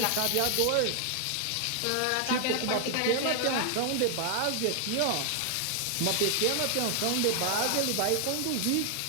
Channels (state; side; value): different; both; correlation 0.00